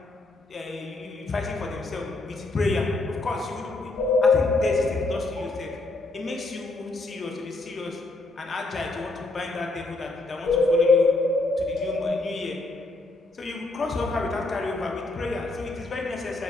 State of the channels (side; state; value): right; quieter; 3.0 dB